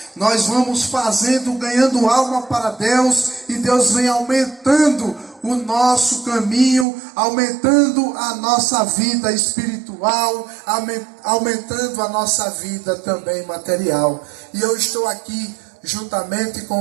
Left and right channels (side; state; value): left; drops out; at 6.9 s